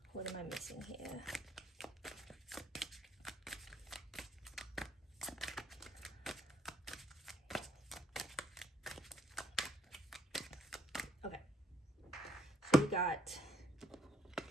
What am I missing here? Okay. So we got,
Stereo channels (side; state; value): both; normal; correlation 0.68